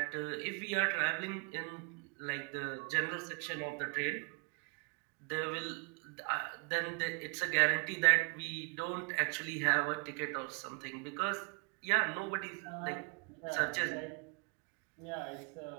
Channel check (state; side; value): quieter; left; 33.6 dB